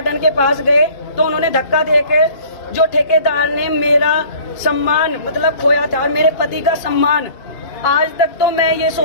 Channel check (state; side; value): late; right; 2.4 ms